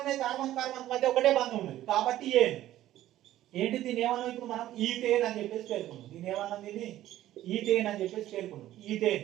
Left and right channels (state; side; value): quieter; left; 13.8 dB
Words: ఉన్నాయి? కార్బన్ మధ్య ఒకటే బంధం ఉన్నది కాబట్టి ఏంటి దీన్ని ఏమన్నా ఇప్పుడు మనం ఈథేన్ అని చెప్పేసి పేర్కొన్నాం. దీన్ని ఏమన్నా ఈథేన్ అని చెప్పేసి పేర్కొన్నాం. ఈథేన్.